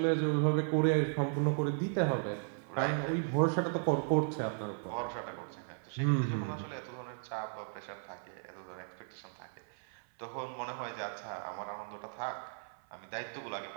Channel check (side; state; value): left; silent; 54 dB below the other